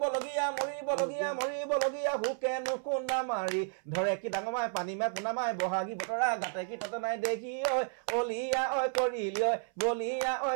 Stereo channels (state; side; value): silent; left; 56 dB below the other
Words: মৰিবলগীয়া হুকেনো কোন্দা মাৰি ধৰে কি ডাঙৰ মাই পানী মাই পোনা মাই বহাগী বতৰা গাতে কি ততে নাই দেখি ঐ অলিয়া ঐ কৰিলি ঐ বলিয়া ঐ